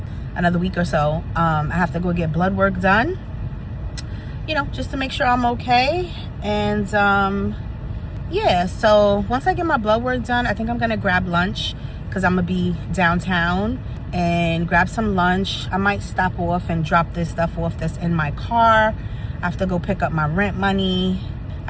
another week or so. I have to go get blood work done, you know, just to make sure I'm okay. And yeah, so once I get my blood work done, I think I'm gonna grab lunch because I'm gonna be downtown, and grab some lunch. I might stop off and drop this stuff off that's in my car. I have to go pick up my rent money.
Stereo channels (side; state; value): both; identical; correlation 1.00